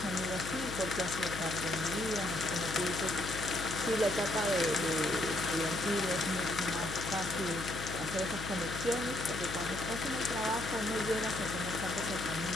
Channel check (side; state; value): left; noise; hum, 8 dB below the sound